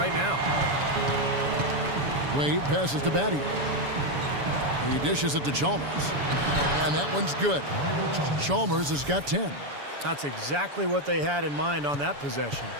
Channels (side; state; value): left; late; 7.0 ms